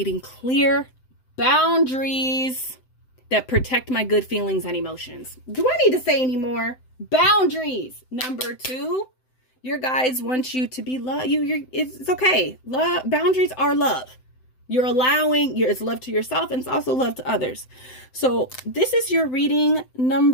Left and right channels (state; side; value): late; right; 7.8 ms